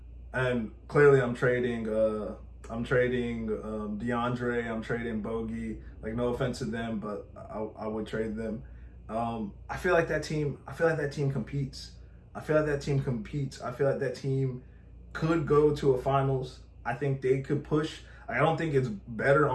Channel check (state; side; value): identical; both; correlation 1.00